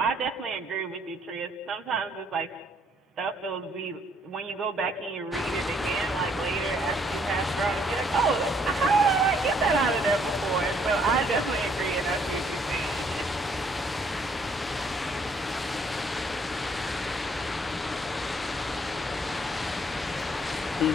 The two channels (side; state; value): both; normal; correlation 0.65